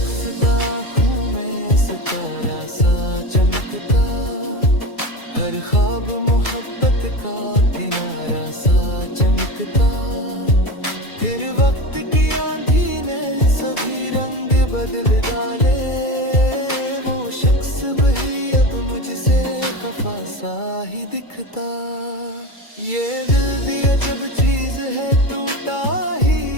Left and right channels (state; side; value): late; right; 2.3 ms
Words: आँखों में सितारा सा चमकता, हर ख्वाब मोहब्बत का किनारा सा चमकता। फिर वक्त की आंधी ने सभी रंग बदल डाले, वो शख्स भी अब मुझसे खफा सा ही दिखता। ये दिल भी अजब चीज है, टूटा